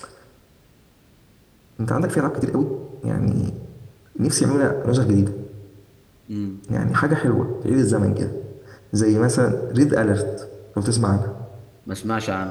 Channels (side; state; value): both; identical; correlation 1.00